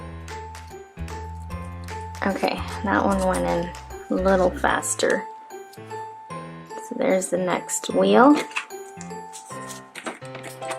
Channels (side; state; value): both; identical; correlation 1.00